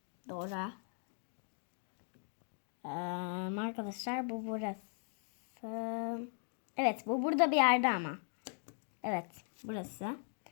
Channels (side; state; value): right; silent; 52 dB below the other